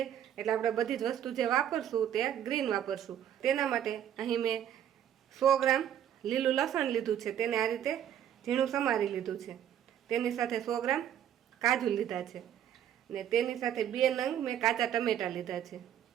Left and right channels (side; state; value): left; quieter; 10.2 dB